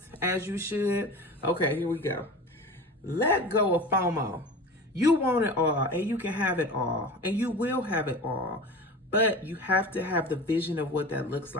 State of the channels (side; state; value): both; normal; correlation 0.33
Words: as you should. Okay, here we go. Let go of FOMO. You want it all, and you can have it all, and you will have it all. But you have to have the vision of what that looks